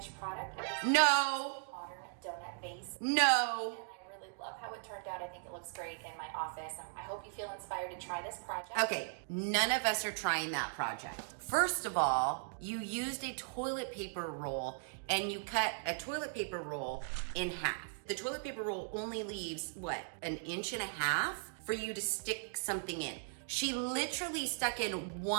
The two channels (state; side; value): silent; left; digital silence